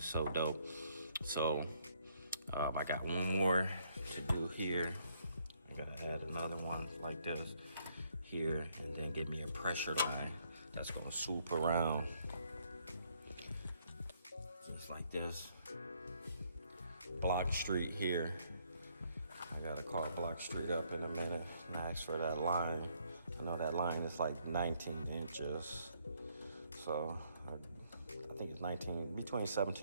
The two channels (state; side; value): inverted; both; correlation -0.69